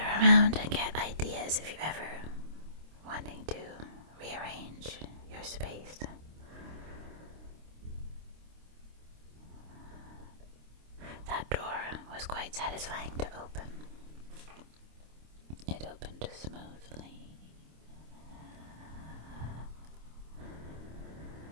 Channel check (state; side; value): late; left; 26 ms